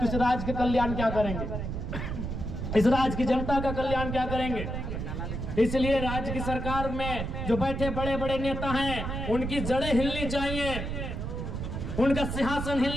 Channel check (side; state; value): right; noise; rumble, 4 dB below the sound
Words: इस राज्य के कल्याण क्या करेंगे, इस राज्य की जनता का कल्याण क्या करेंगे। इसलिए राज्य की सरकार में जो बैठे बड़े बड़े नेता हैं उनकी जड़ें हिलनी चाहिए, उनका सिंहासन